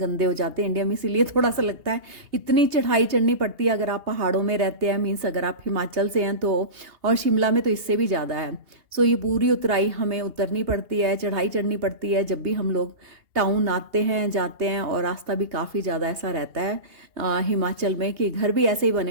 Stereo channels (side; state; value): left; late; 2.8 ms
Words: हो जाते हैं इंडिया में, इसीलिए थोड़ा सा लगता है इतनी चढ़ाई चढ़नी पड़ती है अगर आप पहाड़ों में रहते हैं, मीन्स अगर आप हिमाचल से हैं तो। और शिमला में तो इससे भी ज़्यादा है। सो ये पूरी उतराई हमें उतरनी पड़ती है, चढ़ाई चढ़नी पड़ती है जब भी हम लोग टाउन आते हैं जाते हैं। और रास्ता भी काफ़ी ज़्यादा ऐसा रहता है हिमाचल में कि घर भी ऐसे ही बने